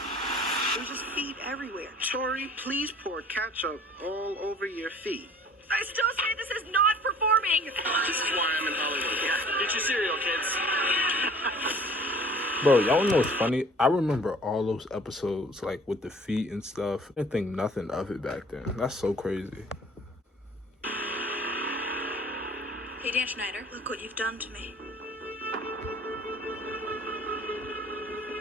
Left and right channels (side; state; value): both; normal; correlation 0.50